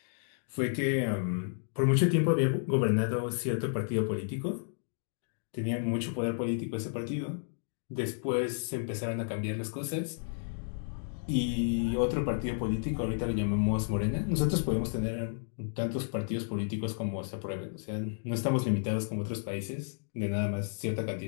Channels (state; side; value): silent; right; digital silence